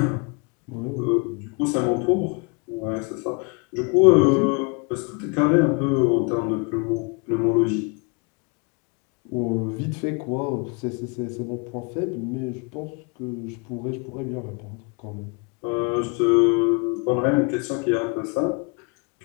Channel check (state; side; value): quieter; right; 32.8 dB